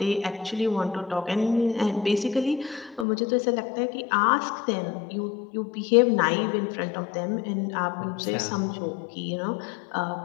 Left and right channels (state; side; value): drops out; right; at 3.1 s